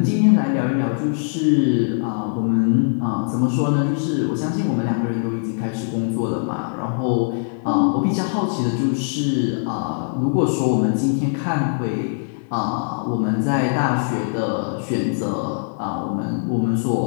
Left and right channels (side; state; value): right; silent; digital silence